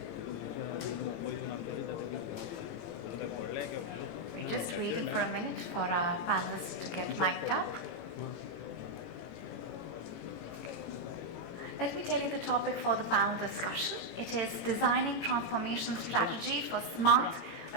We're just waiting for a minute for our panelists to get mic'd up. Let me tell you the topic for the panel discussion. It is designing transformation strategy for smart,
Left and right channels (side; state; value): right; late; 18 ms